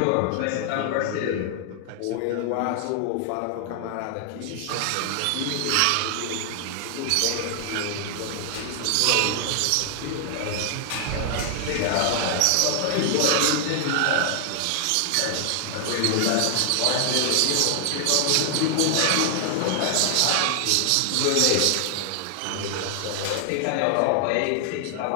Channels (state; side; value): different; both; correlation 0.00